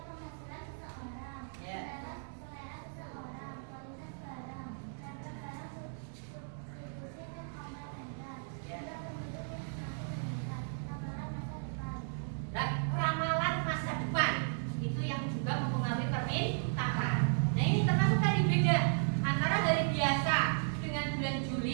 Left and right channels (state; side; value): silent; left; digital silence